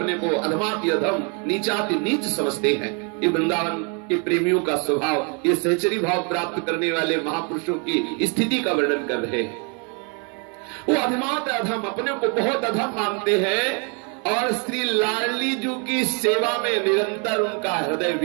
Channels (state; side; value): quieter; left; 35.8 dB